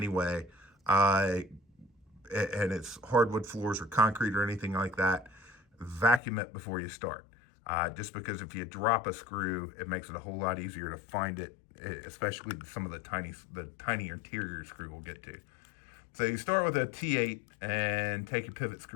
way, and it's hardwood floors or concrete or anything like that, vacuum it before you start. Just because if you drop a screw, it makes it a whole lot easier to find it, especially some of the tiny interior screw we'll get to. So you start with a T8 and take your pivot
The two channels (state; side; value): drops out; right; at 6.2 s